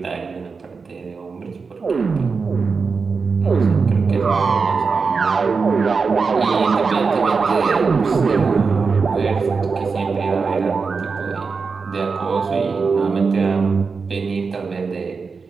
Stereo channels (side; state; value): left; quieter; 4.9 dB